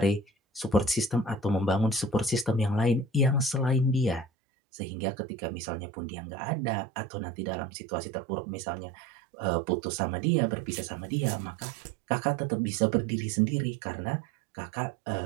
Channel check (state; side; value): drops out; left; at 4.2 s